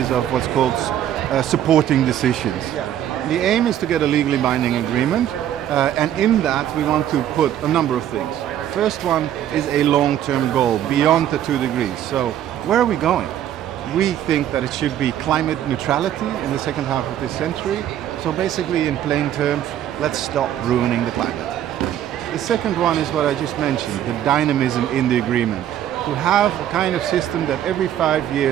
of what's called supporting decisions. The aim is to get a legally binding agreement, and in that we want to put a number of things. First one is a long-term goal beyond the 2 degrees. So where are we going? We think that it should be climate neutrality in the second half of this century. So basically, in plain terms, let's stop ruining the climate. The second one is what I just mentioned, the dynamism in the agreement. To have a kind of system that every 5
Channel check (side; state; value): left; quieter; 11.1 dB